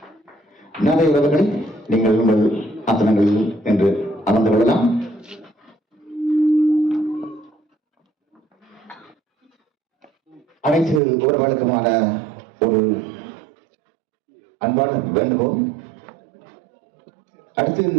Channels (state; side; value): drops out; left; at 11.0 s